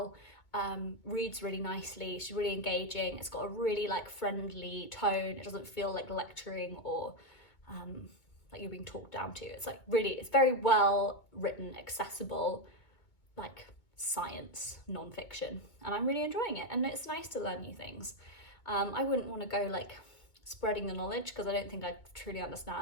reads really nicely, she's really engaging. It's got a really like friendly tone. It doesn't feel like lecturing or like you're being talked down to. It's like it's very well written, accessible, like science non-fiction, and I'm really enjoying it, and it's nice to learn new things. I wouldn't want to go like spreading the knowledge because I don't think I truly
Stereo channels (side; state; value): right; late; 2.2 ms